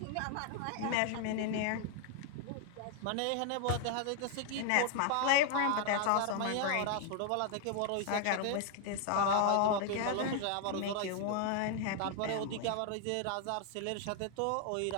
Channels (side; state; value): both; different; correlation 0.00